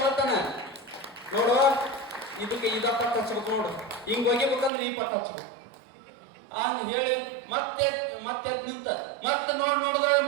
ಹೇಳ್ತಾನ, ನೋಡು ಇದಕ್ಕೆ ಇದ ಪಟ್ಟ ಹಚ್ಬೇಕು, ನೋಡು ಹಿಂಗ್ ಒಗಿಬೇಕಂದ್ರೆ ಈ ಪಟ್ಟ ಹಚ್ಬೇಕು ಹಂಗ ಹೇಳಿ ಮತ್ತೆ ನಿಂತ, ಮತ್ತೆ ನೋಡಿದ್ರೆ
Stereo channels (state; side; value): drops out; left; at 4.7 s